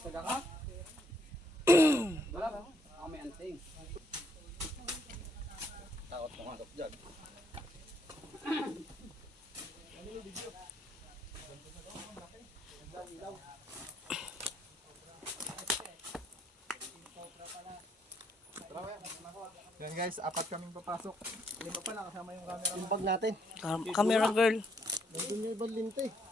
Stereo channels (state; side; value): normal; both; correlation 0.70